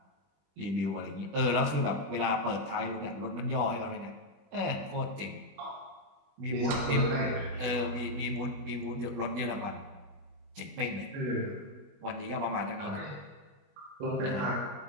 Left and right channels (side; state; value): left; late; 20 ms